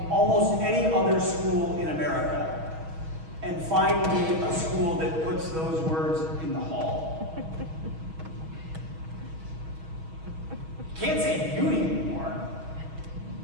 almost any other school in America and find me a school that puts those words in the hall. Can't say beauty anymore.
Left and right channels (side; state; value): left; late; 6.3 ms